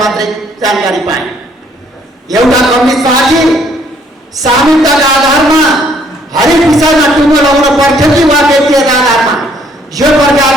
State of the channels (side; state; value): both; normal; correlation 0.65